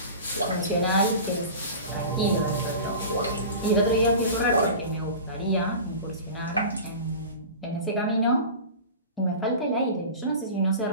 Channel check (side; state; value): both; inverted; correlation -0.35